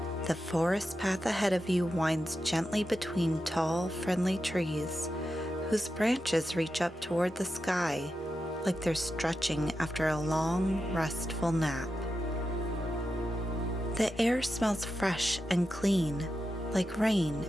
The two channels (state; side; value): normal; both; correlation 0.89